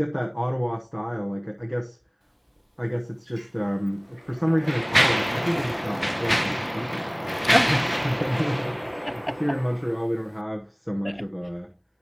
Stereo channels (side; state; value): both; identical; correlation 1.00